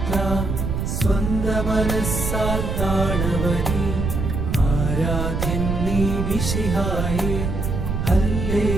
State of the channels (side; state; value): right; noise; rumble, 2 dB below the sound